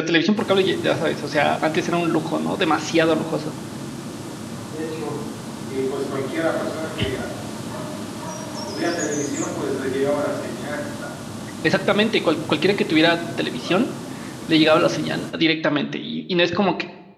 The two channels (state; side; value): identical; both; correlation 1.00